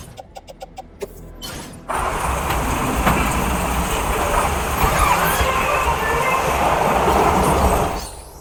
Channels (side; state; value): both; identical; correlation 1.00